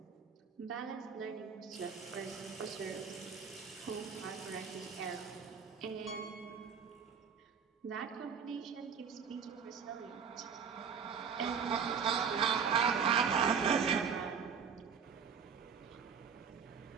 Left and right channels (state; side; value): quieter; left; 6.6 dB